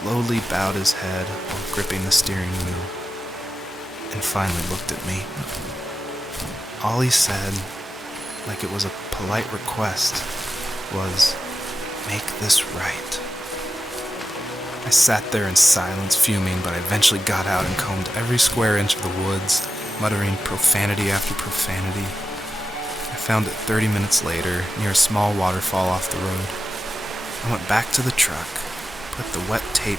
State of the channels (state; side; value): normal; both; correlation 0.91